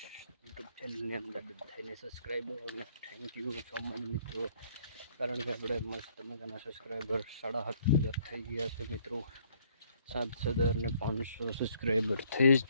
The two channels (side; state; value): both; inverted; correlation -0.63